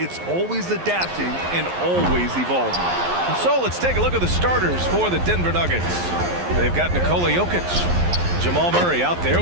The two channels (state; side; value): late; left; 11 ms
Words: always adapting and always evolving. And so let's take a look at the starters for the Denver Nuggets. They've got Nikola Jokic, Jamal Murray out there